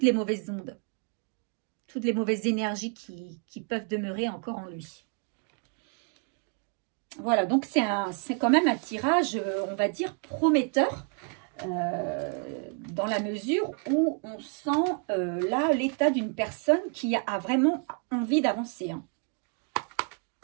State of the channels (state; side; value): quieter; left; 39.1 dB